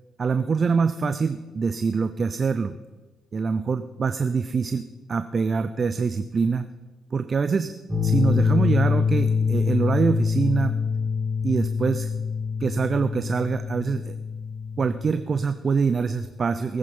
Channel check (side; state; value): both; normal; correlation 0.83